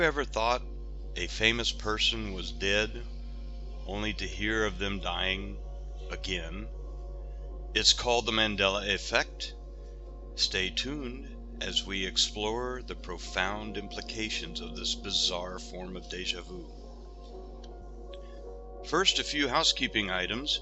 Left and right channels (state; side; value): identical; both; correlation 1.00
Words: ever thought a famous person was dead only to hear of them dying again? It's called the Mandela Effect. Stay tuned as we explore the profound implications of this bizarre form of déjà vu. First, a few housekeeping items.